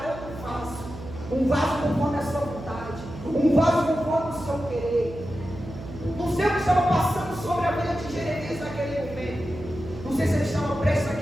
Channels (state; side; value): noise; right; hum, 13 dB below the sound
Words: um vaso conforme a sua vontade, um vaso conforme o seu querer. Não sei o que estava passando sobre a vida de Jeremias